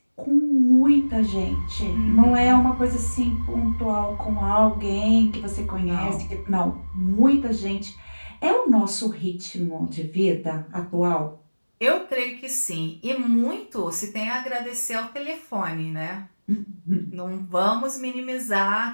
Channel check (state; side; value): inverted; both; correlation -1.00